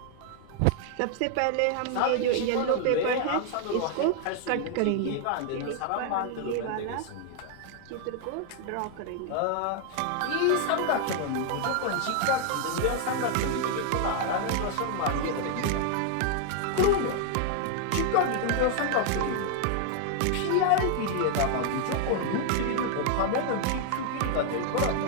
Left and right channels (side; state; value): both; different; correlation 0.00